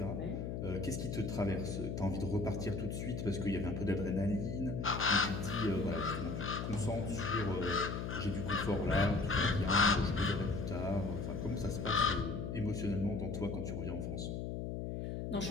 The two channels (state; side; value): noise; left; hum, 3 dB below the sound